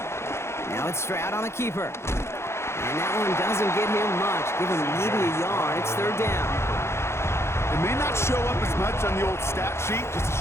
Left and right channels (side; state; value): right; late; 0.13 ms